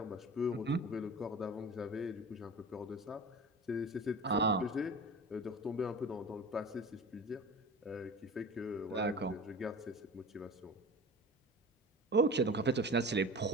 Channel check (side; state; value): both; normal; correlation 0.36